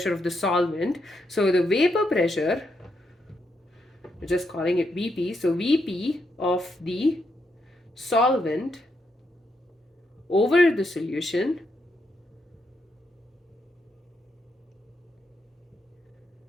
of the solvent, so the vapor pressure, we're just calling it VP, so VP of the solvent over the solution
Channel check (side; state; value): both; normal; correlation 0.80